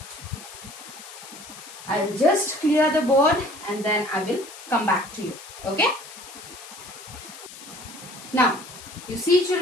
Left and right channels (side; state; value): left; noise; hiss, 15 dB below the sound